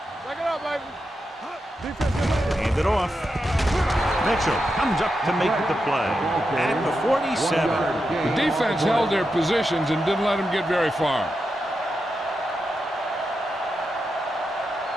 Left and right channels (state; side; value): normal; both; correlation 0.87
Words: Back it up, baby. Hand it off. Mitchell comes up to make the play at the 47. The defense held their positions and didn't let them get very far.